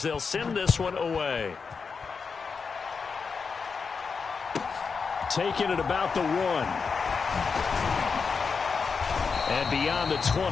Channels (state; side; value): quieter; right; 5.3 dB